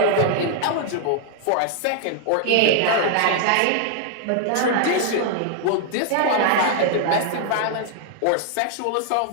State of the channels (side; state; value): both; different; correlation 0.00